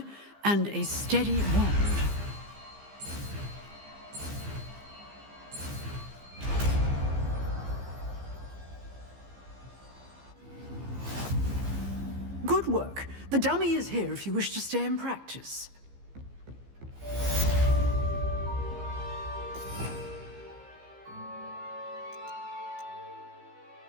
and a steady wand. Good work. The dummy is here if you wish to stay and practice.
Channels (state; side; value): late; left; 15 ms